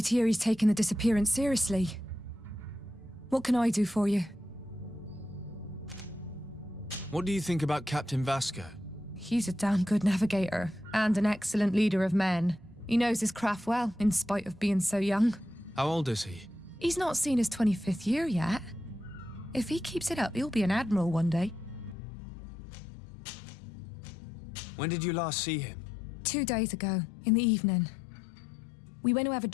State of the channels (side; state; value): right; drops out; at 22.0 s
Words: to hear he's taken the disappearance seriously. What can I do for you? What do you think about Captain Vasco? He's a damn good navigator, and an excellent leader of men. He knows his craft well, in spite of being so young. How old is he? He's not seen his 25th year yet. If he keeps it up, he'll be an admiral one day. When did you last see him? 2 days ago, in the evening. We went to have a